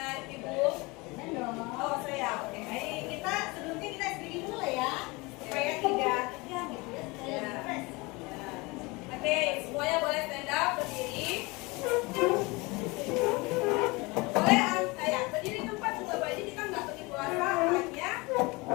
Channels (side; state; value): right; quieter; 25.0 dB